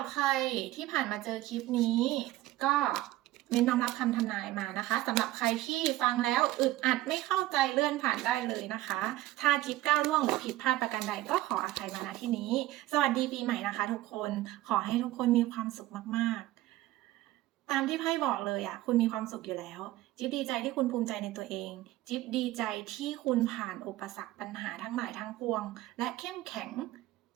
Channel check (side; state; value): left; quieter; 16.3 dB